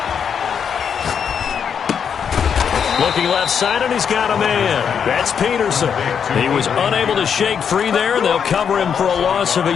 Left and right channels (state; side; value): quieter; right; 7.4 dB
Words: Looking left side, and he's got a man. That's Peterson. He was unable to shake free there, and they'll cover him for a loss of a